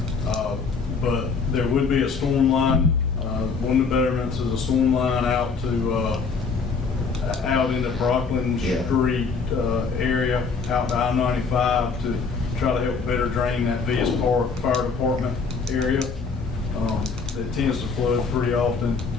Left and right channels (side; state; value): right; quieter; 4.9 dB